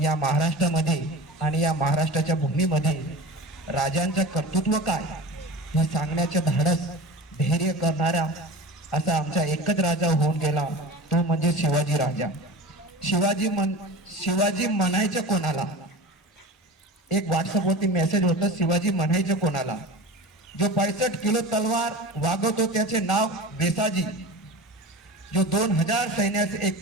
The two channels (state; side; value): normal; both; correlation 0.33